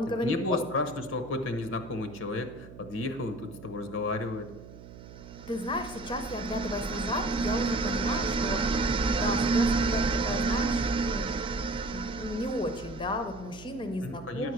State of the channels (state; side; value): noise; right; hum, 16 dB below the sound